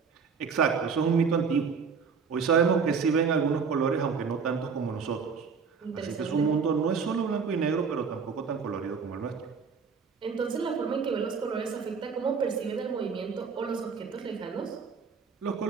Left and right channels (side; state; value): left; quieter; 5.7 dB